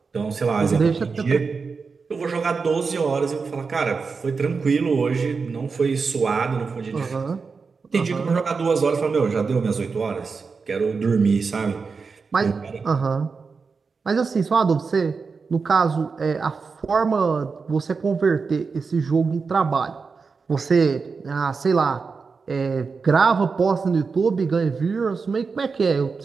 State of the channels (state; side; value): quieter; left; 4.9 dB